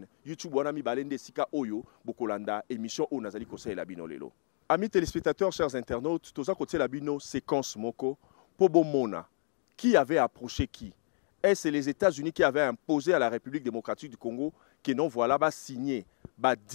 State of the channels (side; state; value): right; silent; 57 dB below the other